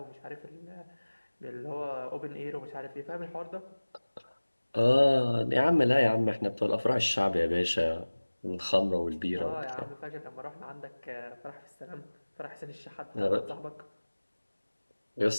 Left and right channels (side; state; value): both; inverted; correlation -1.00